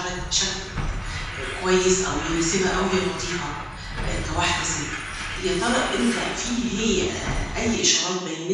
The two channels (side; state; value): both; identical; correlation 1.00